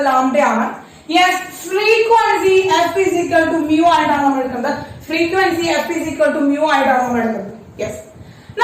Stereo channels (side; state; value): both; identical; correlation 1.00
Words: ലാംഡയാണ്. Yes, frequency f is equal to mu ആയിട്ടാണ് നമ്മൾ എടുക്കുന്നത്. Frequency f is equal to mu ആയിട്ടാണ് നമ്മൾ എടുക്കുന്നത്. യെസ്,